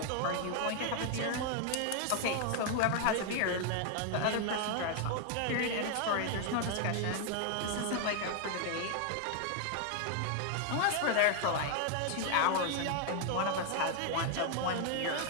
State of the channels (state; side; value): different; both; correlation 0.00